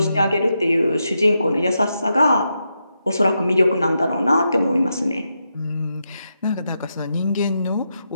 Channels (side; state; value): both; inverted; correlation -0.85